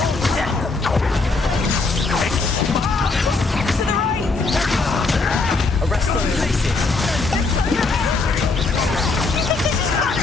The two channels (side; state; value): right; quieter; 3.8 dB